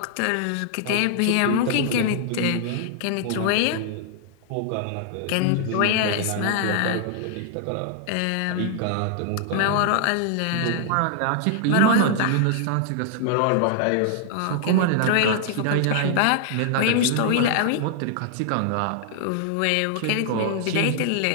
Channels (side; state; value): both; different; correlation -0.01